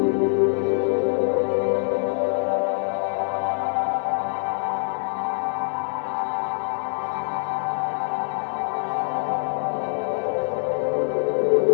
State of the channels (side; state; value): right; silent; digital silence